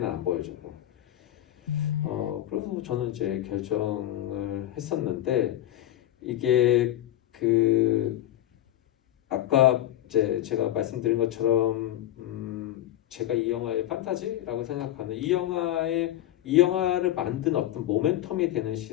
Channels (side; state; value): right; quieter; 13.2 dB